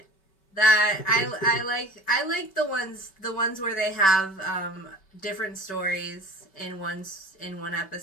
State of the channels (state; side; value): late; right; 5.2 ms